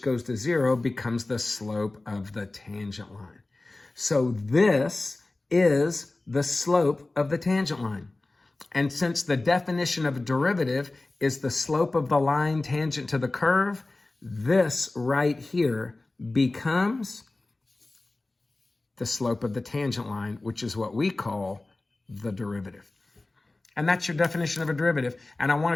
goes to zero becomes the slope of the tangent line. So this is the slope of the tangent line. And since the definition of a derivative is the slope of the line tangent to the curve, this right here becomes the slope of the tangent line, which is what we call the derivative. And that's your definition of a derivative. And I want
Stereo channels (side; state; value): right; quieter; 3.0 dB